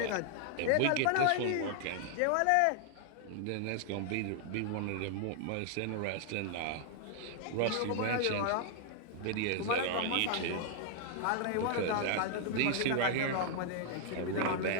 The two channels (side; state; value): both; different; correlation 0.00